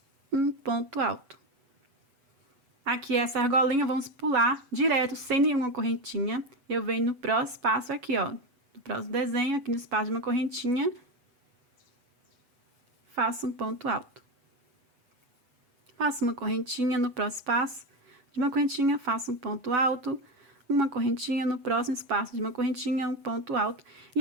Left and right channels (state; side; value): late; left; 8.1 ms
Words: um ponto alto. Aqui, essa argolinha, vamos pular direto, sem nenhuma correntinha. Eu venho no próximo espaço aqui, ó, no próximo desenho, aqui no espaço de uma correntinha, faço um ponto alto. Faço uma correntinha no próximo espaço de uma correntinha, faço um ponto alto, uma correntinha no próximo espaço de uma correntinha, um ponto alto.